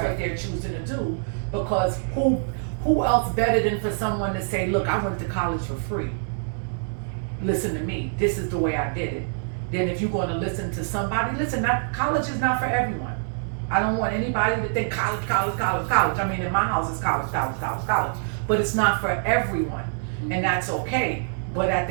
what they're choosing to do. Because who else better than for someone to say, look, I went to college for free. Listen to me. This is the way I did it. Then if you're going to listen to somebody, college is not for everyone. I don't want anybody to think college. I mean, in my house, it's college. But it's not for everyone, and that's okay. But at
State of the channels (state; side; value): silent; left; 62 dB below the other